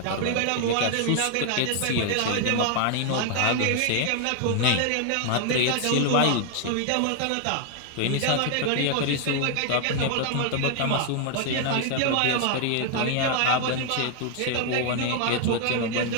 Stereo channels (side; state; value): both; different; correlation 0.00